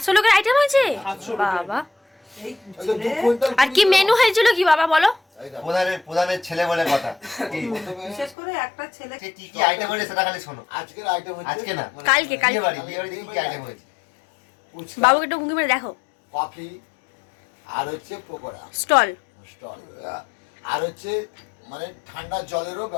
লোকের আইটেম হয়েছে 700 লোকের। বাবা। ওই তো 2 কুইন্টাল আর কি মেনু হয়েছিল কি বাবা বলো? প্রধানের ছেলে বলে কথা। বিশেষ করে একটা ছেলে সে কি কি আইটেম হয়েছে সেটা খালি শোনো। আজকের আইটেম হচ্ছে আজকে না কালকে বিয়ে বাড়িতে কি কি আইটেম হয়েছে? বাবুকে একটু ঘুঁকি মেরে দেখো। কফি আর হচ্ছে পকোড়া স্টল। স্টল, আর হচ্ছে মানে ঠান্ডা জলেরও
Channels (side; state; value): right; drops out; at 8.3 s